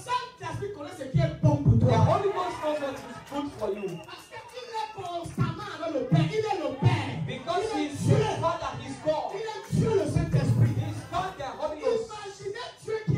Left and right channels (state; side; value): identical; both; correlation 1.00